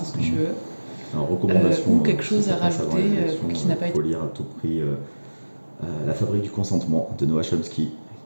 ce que tu veux. Alors, recommandation, ou quelque chose à rajouter qui n'a pas été... Il faut lire à tout prix La fabrique du consentement de Noah Chomsky,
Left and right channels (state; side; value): inverted; both; correlation -1.00